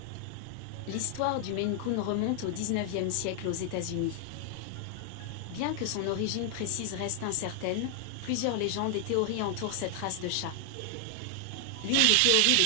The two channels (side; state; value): both; different; correlation 0.00